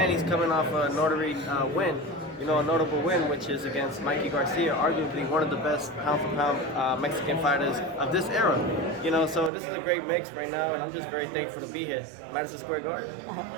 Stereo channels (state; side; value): drops out; left; at 9.5 s